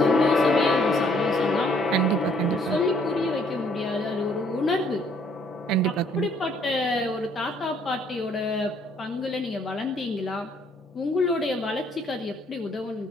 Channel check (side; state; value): both; normal; correlation 0.64